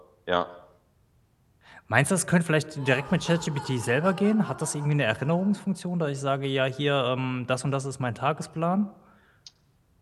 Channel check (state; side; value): identical; both; correlation 1.00